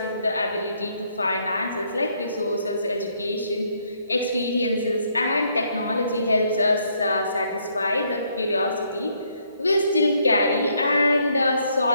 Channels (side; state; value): both; inverted; correlation -0.71